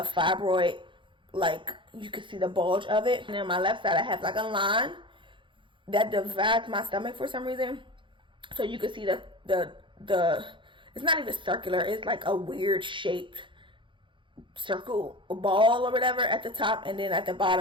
fibroid. Like, you can see the bulge of it. And on my left side I have like a line that divides my stomach for some reason. So you can see the it's not even circular, it's like a weird shaped circle ball or whatever at the top, and then at the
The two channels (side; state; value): left; late; 0.24 ms